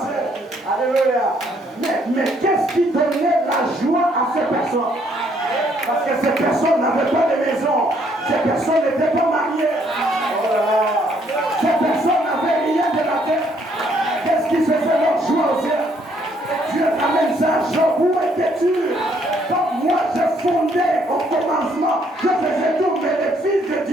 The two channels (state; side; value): normal; both; correlation 0.67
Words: Alléluia. Mais qu'est-ce qui donnait la joie à ces personnes? Parce que ces personnes n'avaient pas de maison. Ces personnes n'étaient pas mariées. Ces personnes n'avaient rien de la terre. Qu'est-ce qui faisait leur joie au ciel? Dieu amène ça. Job, où étais-tu? Quand moi je fondais au commencement, je faisais tout, mais les fils de